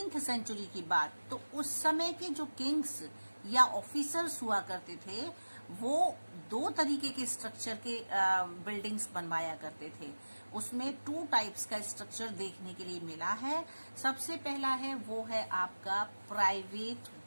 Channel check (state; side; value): inverted; both; correlation -1.00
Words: सेंचुरी की बात, तो उस समय के जो किंग्स या ऑफिसर्स हुआ करते थे, वो 2 तरीके के स्ट्रक्चर के बिल्डिंग्स बनवाया करते थे। उसमें 2 टाइप्स का स्ट्रक्चर देखने के लिए मिला है। सबसे पहला है वो है आपका प्राइवेट